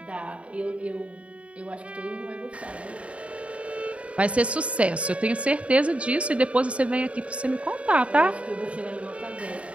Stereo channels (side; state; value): left; late; 0.063 ms